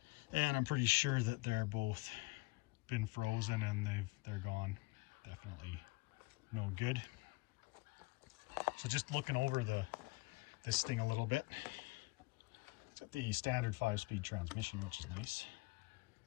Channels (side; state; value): right; quieter; 23.7 dB